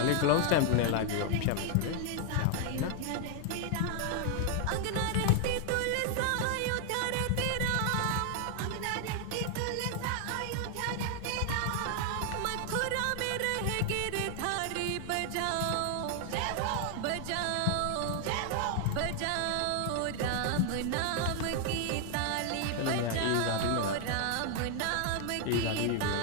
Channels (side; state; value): both; different; correlation 0.00